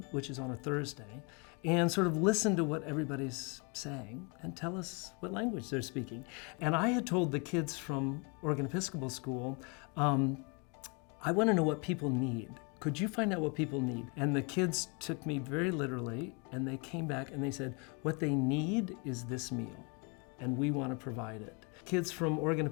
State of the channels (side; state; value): right; quieter; 32.9 dB